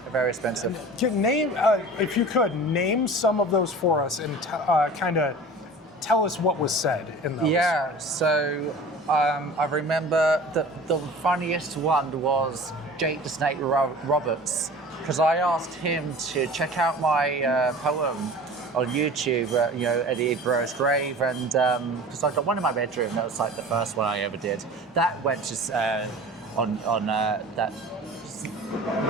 expensive. Name, if you could, name some of those for us and kind of tell us what was said in those. Yeah, so I remember the funniest one was Jake the Snake Roberts, because I asked him to check out my poem on YouTube, Eddie Guerrero's grave, and because I got one in my bedroom, that was like the first one I ever did. That went to on that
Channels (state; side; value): normal; both; correlation 0.39